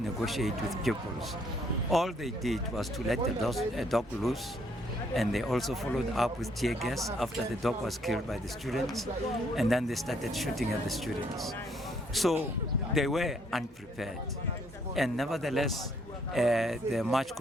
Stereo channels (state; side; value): normal; both; correlation 0.68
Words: with pupils. All they did was to let a dog loose, and they also followed up with tear gas after the dog was killed by the students, and then they started shooting at the students. So they were unprepared, and nevertheless the march